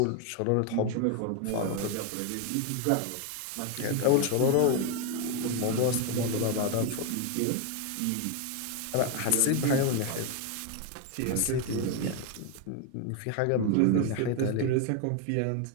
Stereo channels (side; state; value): both; different; correlation 0.01